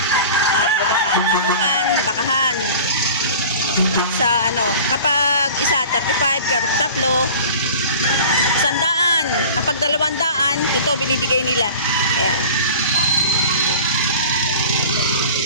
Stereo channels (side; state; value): both; inverted; correlation -0.40